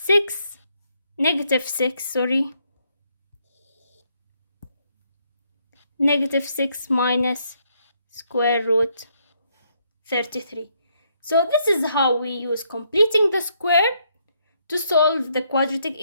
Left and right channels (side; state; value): both; inverted; correlation -0.73